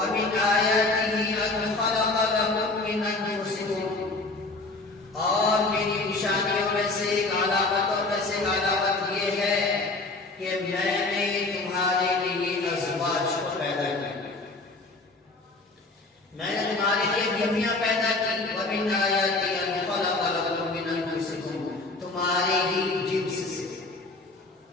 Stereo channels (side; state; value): right; quieter; 3.3 dB